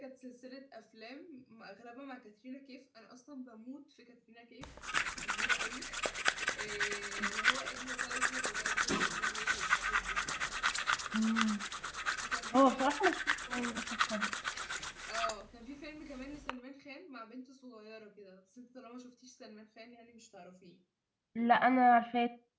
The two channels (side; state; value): both; identical; correlation 1.00